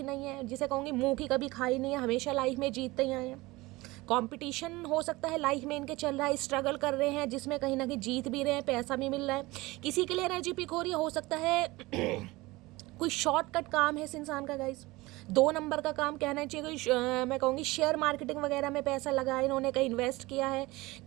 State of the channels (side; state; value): left; quieter; 21.0 dB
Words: नहीं है, जिसे कहूँगी मुँह की कभी खाई नहीं है, हमेशा लाइफ में जीतते ही आए हैं। कंपटीशन हो सकता है लाइफ में इनके चल रहा है, स्ट्रगल कर रहे हैं, जिसमें कहीं ना कहीं जीत भी रहे हैं, पैसा भी मिल रहा है। किसी के लिए एनर्जी पिक हो रही है, हो सकता है कोई शॉर्टकट काम है इस इंसान का गाइस, 2 नंबर का काम कहना चाहिए कोई मैं कहूँगी शेयर मार्केटिंग वगैरह में पैसा लगाया इन्होंने, कहीं इन्वेस्ट किया है,